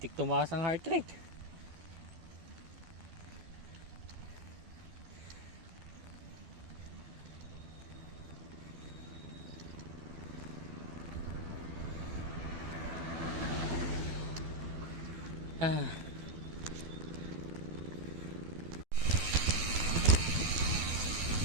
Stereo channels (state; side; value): late; left; 12 ms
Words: tumaas ang heart rate. Ah.